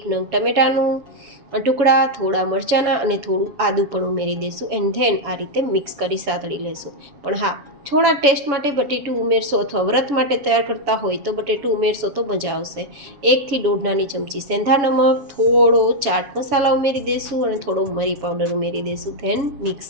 નંગ ટમેટાનું ટુકડા, થોડા મરચાંના અને થોડું આદું પણ ઉમેરી દઈશું એન્ડ ધેન આ રીતે મિક્સ કરી સાતળી લેશું. પણ હા, થોડા ટેસ્ટ માટે બટેટું ઉમેરશો અથવા વ્રત માટે તૈયાર કરતા હોય તો બટેટું ઉમેરશો તો મજા આવશે. 1 થી 1.5 નાની ચમચી સેંધા નમક, થોડો ચાટ મસાલા ઉમેરી દઈશું અને થોડો મરી પાવડર ઉમેરી દઈશું. Then mix.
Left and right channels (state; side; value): late; left; 7.1 ms